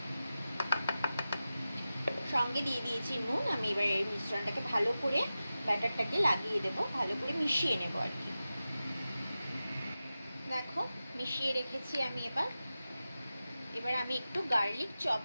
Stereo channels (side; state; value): both; inverted; correlation -0.94